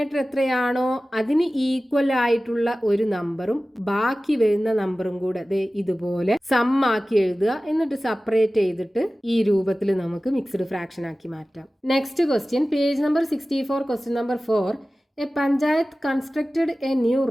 എത്രയാണോ അതിന് ഈക്വൽ ആയിട്ടുള്ള ഒരു നമ്പറും ബാക്കി വരുന്ന നമ്പറും കൂടെ ദേ ഇതുപോലെ സം ആക്കി എഴുതുക, എന്നിട്ട് സെപ്പറേറ്റ് ചെയ്തിട്ട് ഈ രൂപത്തിൽ നമുക്ക് മിക്സ്ഡ് ഫ്രാക്ഷൻ ആക്കി മാറ്റാം. Next question, page number 64, question number 4. A panchayat constructed a new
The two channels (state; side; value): normal; both; correlation 0.96